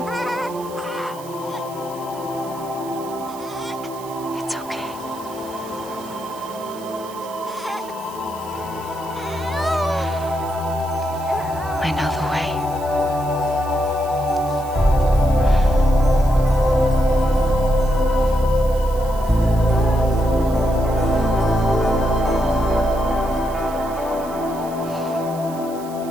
It's okay. I know the way.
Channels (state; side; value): noise; right; hiss, 19 dB below the sound